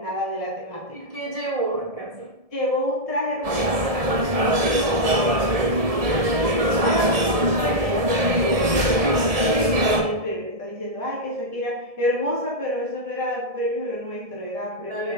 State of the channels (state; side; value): late; left; 1.7 ms